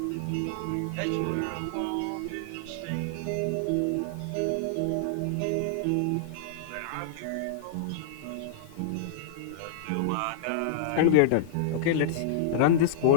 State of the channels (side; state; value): both; different; correlation -0.01